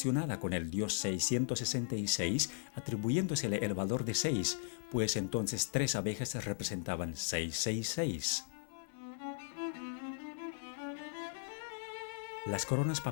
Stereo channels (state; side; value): silent; right; 53 dB below the other